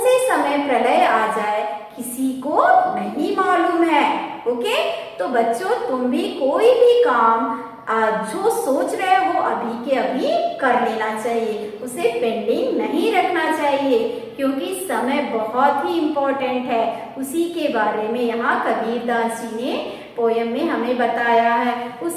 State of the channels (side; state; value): both; identical; correlation 1.00